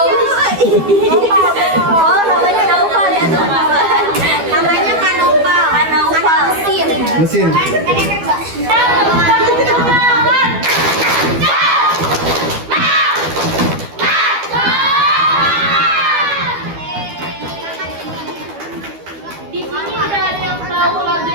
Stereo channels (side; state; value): left; late; 12 ms